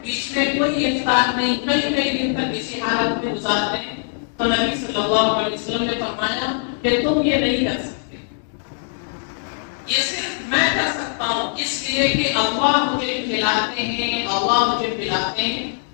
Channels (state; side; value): silent; right; digital silence